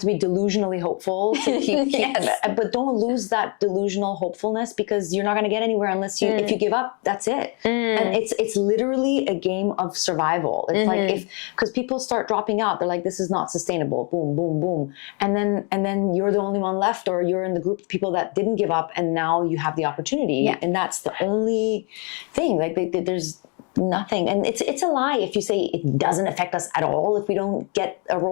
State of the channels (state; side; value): quieter; right; 35.2 dB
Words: be delusionally hopeful to keep but don't lose that delusional hopefulness, because you're not going to get anywhere unless if you give up, that's it. And it's literally a game of survival. It's like, because people start dropping out, they're like, this is not sustainable, boom, boom, boom. And then you're the only one left, or you're in the group of people that didn't give up, and now you have the opportunity. And that's the only thing. Like, there's nothing. And it's a lie if you say it doesn't affect us at all if we don't get a